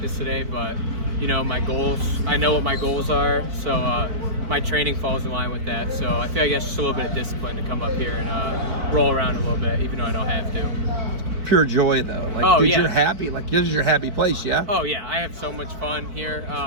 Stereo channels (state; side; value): late; left; 4.5 ms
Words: today, but, you know, my goals, I know what my goals are, so my training falls in line with that. So I feel like that's just a little bit of discipline to come up here and roll around a little bit, even though I don't have to. Pure joy, though. Like, dude, yeah. You're happy. Like, this is your happy place, yeah? Oh, yeah. I have so much fun here.